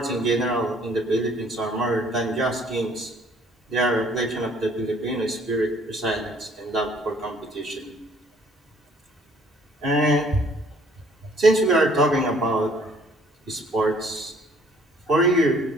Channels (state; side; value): normal; both; correlation 0.59